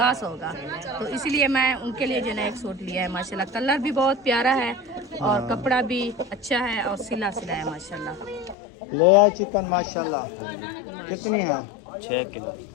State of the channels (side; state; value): right; drops out; at 8.6 s